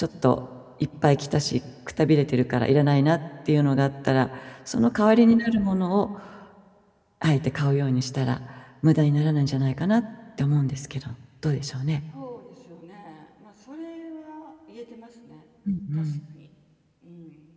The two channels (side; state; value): both; identical; correlation 1.00